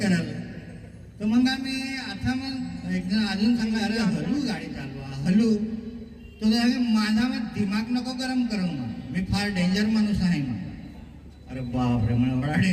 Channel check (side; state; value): both; identical; correlation 1.00